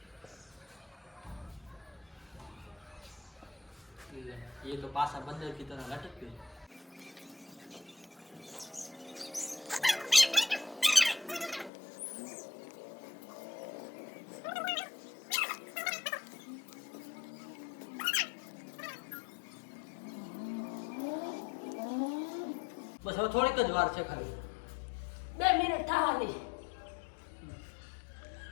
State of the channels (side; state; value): right; drops out; at 11.7 s